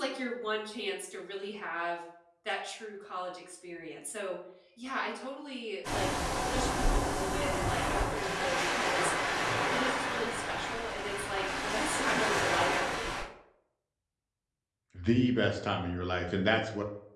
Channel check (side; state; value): both; identical; correlation 1.00